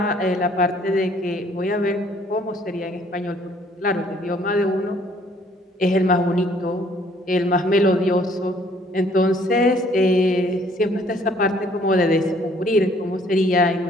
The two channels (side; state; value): both; normal; correlation 0.61